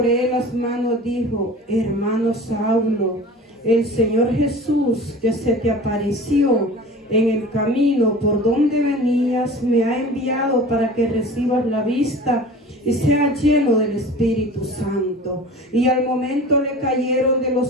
él las manos, dijo: hermano Saulo, el Señor Jesús, que se te apareció en el camino por donde venías, me ha enviado para que recibas la vista y sea lleno del Espíritu Santo. Y al momento le cayeron de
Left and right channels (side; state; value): both; normal; correlation 0.39